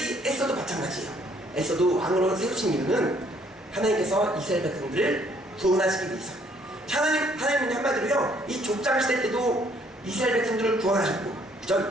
에스더도 마찬가지예요. 에스더도 왕으로 세우신 이유는 하나님께서 이스라엘 백성들을 구원하시기 위해서. 하나님은 한마디로요, 이 족장 시대 때도 이스라엘 백성들을 구원하셨고,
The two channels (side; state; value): both; normal; correlation 0.64